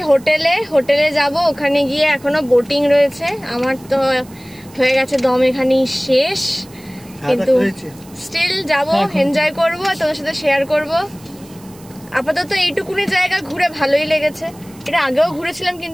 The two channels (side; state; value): right; noise; hiss, 24 dB below the sound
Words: হোটেলে যাব। ওখানে গিয়ে এখনো বোটিং রয়েছে, আমার তো হয়ে গেছে দম এখানেই শেষ, কিন্তু স্টিল যাব, এনজয় করব, তোমার সাথে শেয়ার করব। আপাতত এইটুকুনি জায়গা ঘুরে ভালোই লেগেছে। এটা আগেও ঘুরেছিলাম,